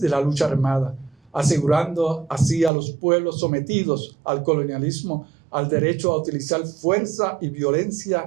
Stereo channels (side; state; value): left; drops out; at 2.7 s